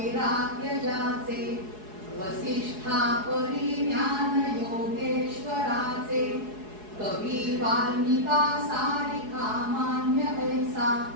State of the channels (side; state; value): left; late; 4.7 ms